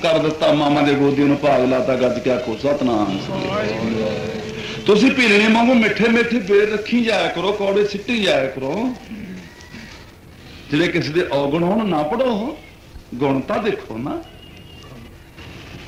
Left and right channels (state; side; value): identical; both; correlation 1.00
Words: दिता, मामा दे गोदी नूं भाग लाता, गज क्या खो सतनाम। तुसीं पीलने वांगू मिठे मिठे बेर रखी जाया करो, कौड़े सिੱਟੀ जाया करो। जिहड़े किसी दे औगण होण ना पढ़ो, गुण तां देखो ना।